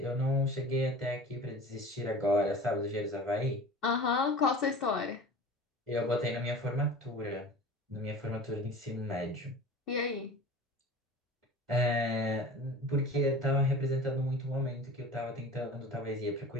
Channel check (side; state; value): both; normal; correlation 0.37